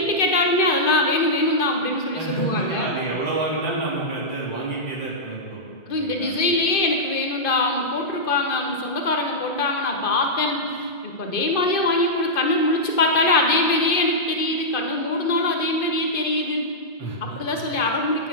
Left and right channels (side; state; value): right; late; 2.5 ms